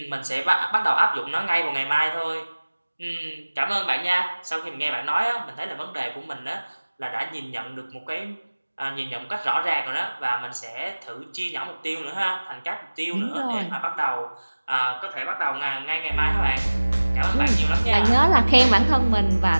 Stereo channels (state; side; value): inverted; both; correlation -1.00